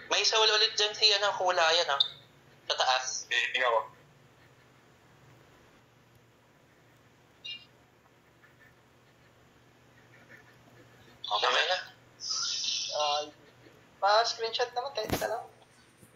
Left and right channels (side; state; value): both; identical; correlation 1.00